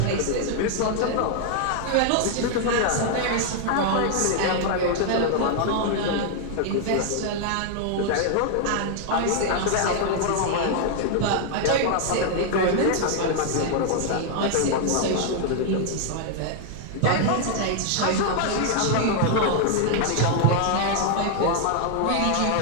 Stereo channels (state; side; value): different; both; correlation 0.00